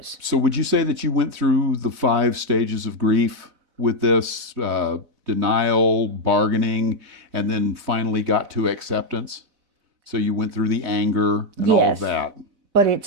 So would you say that you went through the 5 stages of grief with this, denial, bargaining, and then finally got to acceptance? So you went through the anger and all of that. But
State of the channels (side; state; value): left; late; 4.0 ms